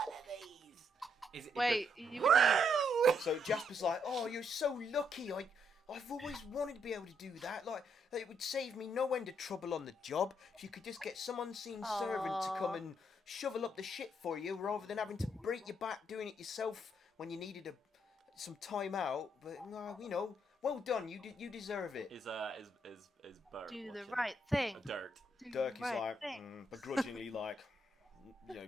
of these. Wait, you would need... So Jasper's like, oh, you're so lucky. I've always wanted to be able to do that. Like, it would save me no end of trouble on the job if you could just get some unseen servant to come and shovel up the shit for you, rather than having to break your back doing it yourself when you needed some time out. But well done. You deserve it. Is Bert Do the watching? right thing. Dirt. Dirk is right like thing. begrudgingly like,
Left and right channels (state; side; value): normal; both; correlation 0.74